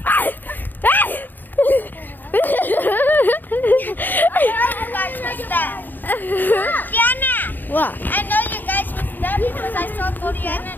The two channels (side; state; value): right; late; 0.089 ms